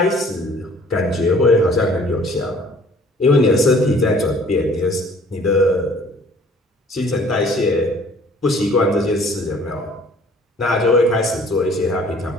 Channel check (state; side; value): normal; both; correlation 0.55